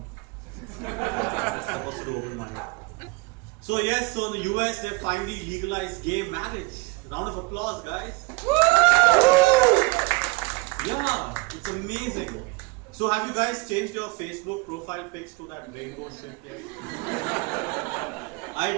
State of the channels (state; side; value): quieter; left; 25.4 dB